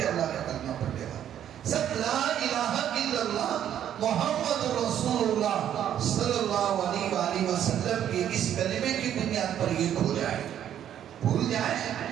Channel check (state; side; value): quieter; left; 10.3 dB